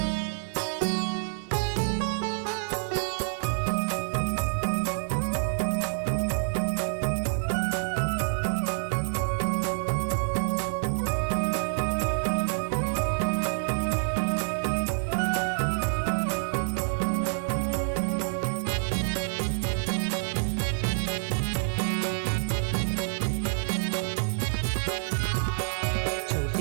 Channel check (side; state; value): left; silent; digital silence